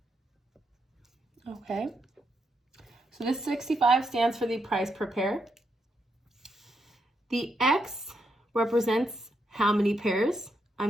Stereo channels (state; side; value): normal; both; correlation 0.80